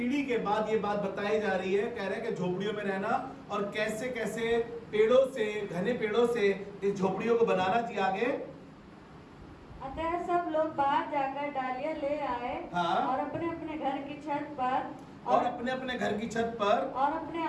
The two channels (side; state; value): both; identical; correlation 1.00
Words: के बाद ये बात बताई जा रही है, कह रहे हैं कि झोपड़ियों में रहना और कैसे कैसे पेड़ों से, घने पेड़ों से इस झोपड़ियों को बनाना चाहिए। आगे, अतः सब लोग बाहर जाकर डालियां ले आए और अपने अपने घर की छत पर और अपने अपने घर की छत पर और अपने